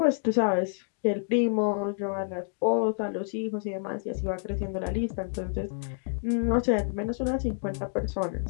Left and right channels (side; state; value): right; silent; digital silence